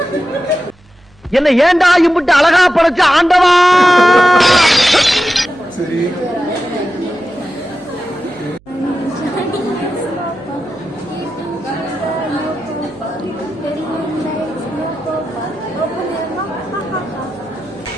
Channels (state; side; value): noise; right; hum, 29 dB below the sound